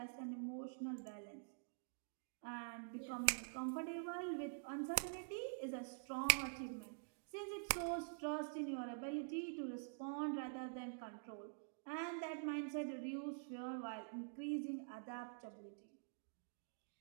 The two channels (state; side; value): silent; left; digital silence